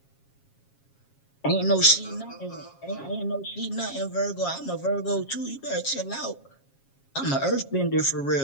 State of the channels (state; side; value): late; right; 7.3 ms